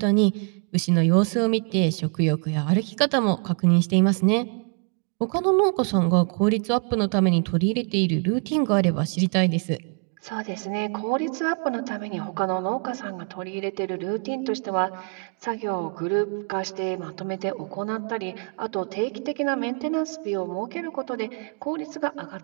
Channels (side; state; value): left; quieter; 38.8 dB